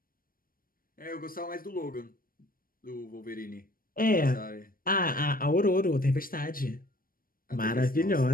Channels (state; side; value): late; right; 0.41 ms